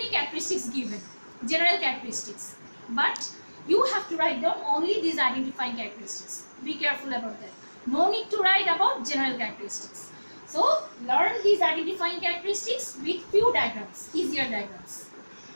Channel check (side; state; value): both; inverted; correlation -1.00